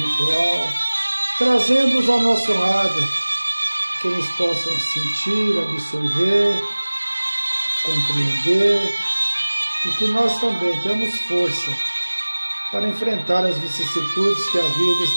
trazendo-os ao nosso lado, que eles possam sentir, absorver, compreender, e que nós também temos força para enfrentar as vicissitudes que a vida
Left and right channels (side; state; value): both; inverted; correlation -1.00